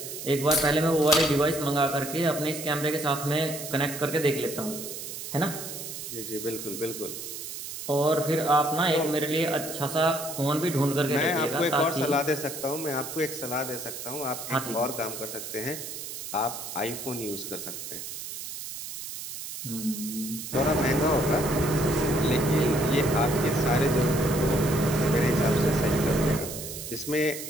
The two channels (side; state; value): right; noise; hiss, 9 dB below the sound